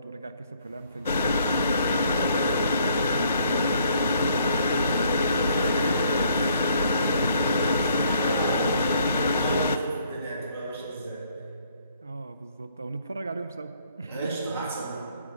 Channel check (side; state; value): both; inverted; correlation -0.65